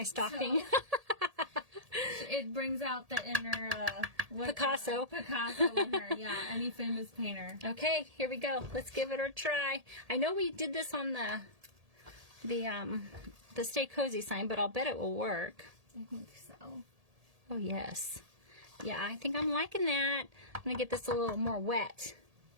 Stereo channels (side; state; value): left; late; 1.8 ms